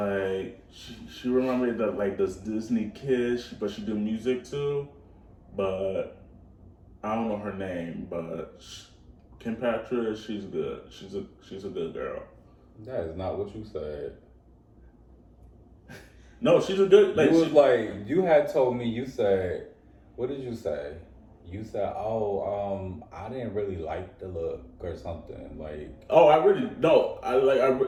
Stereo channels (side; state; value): both; identical; correlation 1.00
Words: she remembered that like this Disney kid, but she do music too. But I don't know her name, but Kim Petras, she's good. She's a good girl. That is not what you said. No, she's a good. You had told me. You said, what did you say? You said, I didn't really like the look or something like. Oh, I really no. I